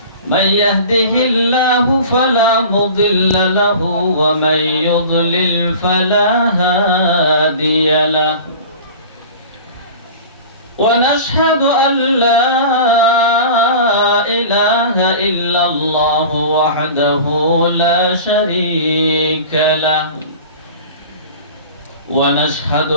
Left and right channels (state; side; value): inverted; both; correlation -0.38